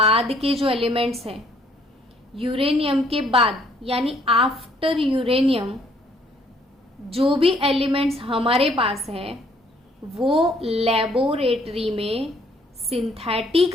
के जो एलिमेंट्स हैं, यूरेनियम के बाद यानी आफ्टर यूरेनियम जो भी एलिमेंट्स हमारे पास है, वो लेबोरेटरी में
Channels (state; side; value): normal; both; correlation 0.64